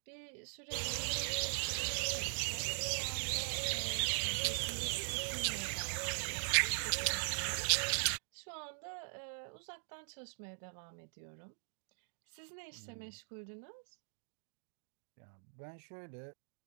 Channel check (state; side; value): silent; left; digital silence